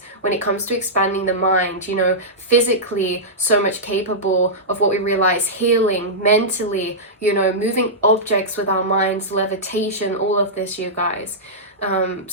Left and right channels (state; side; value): normal; both; correlation -0.13